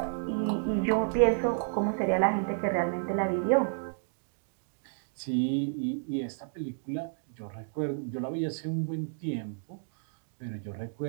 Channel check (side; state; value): left; silent; digital silence